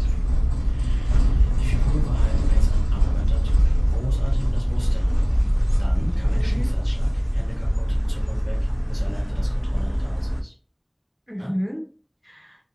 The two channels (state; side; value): identical; both; correlation 1.00